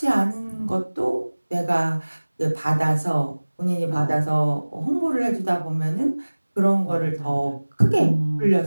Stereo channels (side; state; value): both; inverted; correlation -1.00